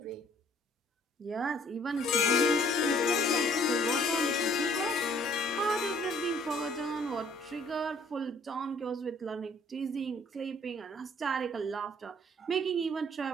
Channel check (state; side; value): normal; both; correlation 0.59